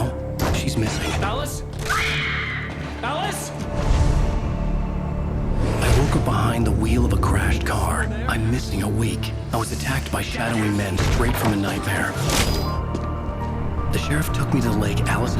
she's missing. Alice? Alice? I woke up behind the wheel of a crashed car. I'm missing a week. I was attacked by shadowy men straight from a nightmare. The sheriff took me to the lake Alice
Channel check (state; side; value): identical; both; correlation 1.00